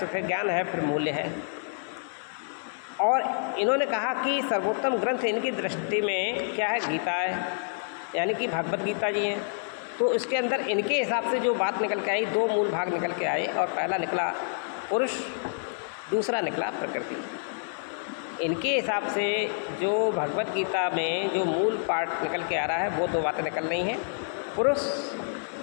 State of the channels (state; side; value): silent; right; digital silence